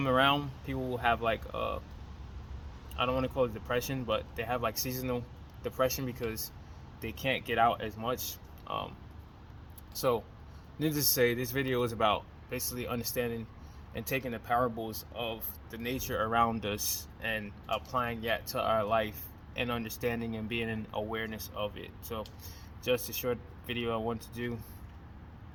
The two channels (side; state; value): both; identical; correlation 1.00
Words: around, people will have I don't want to call it depression, but they have seasonal depression because they can't get out as much. So needless to say, this video is about basically understanding and taking the parables of the nature around us and applying that to our life and understanding and being in awareness of it. So just a short video I want to do.